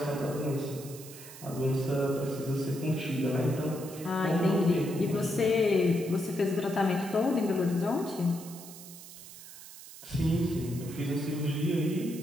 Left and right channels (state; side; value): noise; right; hiss, 15 dB below the sound